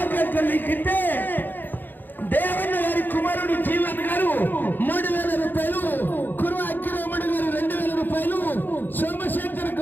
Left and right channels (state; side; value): late; right; 0.090 ms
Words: లిఖితే దేవన్న గారి కుమారుడు జీవన్ గారు 3000 రూపాయలు, కురువ అక్కిరామణి గారు 2000 రూపాయలు, సోమశేఖర్